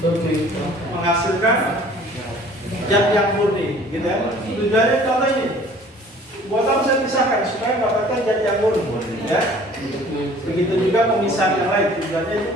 menghasilkan zat yang murni, gitu ya. Tujuannya contoh ini. Buat apa saya pisahkan supaya mendapatkan zat yang murni, ya. Begitu juga pemisahan yang lain. Tujuannya itu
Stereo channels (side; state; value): both; normal; correlation 0.51